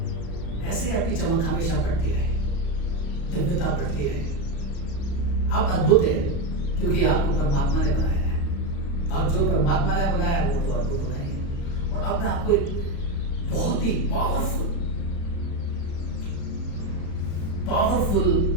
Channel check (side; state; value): right; late; 35 ms